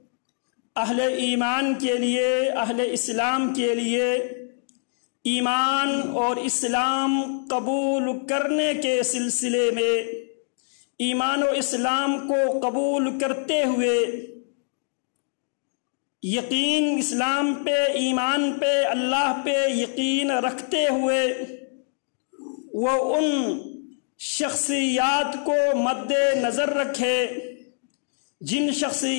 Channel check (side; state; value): right; silent; digital silence